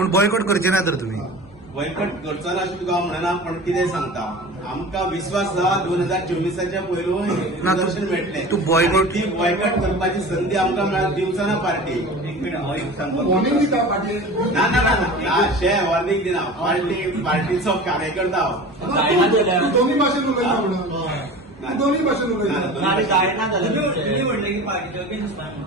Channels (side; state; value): both; normal; correlation 0.36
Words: बॉयकॉट करचे ना तर तुमी बॉयकॉट करचो ना अशें तुका हांव म्हणना पण कितें सांगता आमकां विश्वास आसा 2024च्या पयलू रिजर्वेशन मेळटलें. तूं boycott- ती बॉयकॉट करपाची संदी आमकां मेळत दिवचो ना पार्टी. एक मिनिट हांव एक सांगता वॉर्निंग दिता पार्टी ना ना ना ना शे वॉर्निंग दिना पार्टीचो कार्यकर्ता हांव. तूं दोन्ही भाशेन उलयता म्हणून तूं दोन्ही भाशेन उलयता. तुम्ही म्हणले की पार्टीच्या अगेन्स्ट